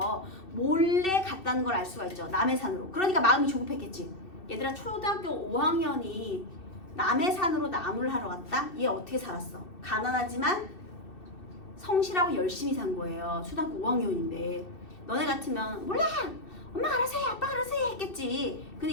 몰래 갔다는 걸 알 수가 있죠. 남의 산으로. 그러니까 마음이 조급했겠지. 얘들아, 초등학교 5학년이 남의 산으로 나무를 하러 갔다? 얘 어떻게 살았어? 가난하지만 성실하고 열심히 산 거예요. 초등학교 5학년인데. 너네 같으면 몰라! 엄마 알아서 해, 아빠 알아서 해 했겠지.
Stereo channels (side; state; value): right; late; 2.7 ms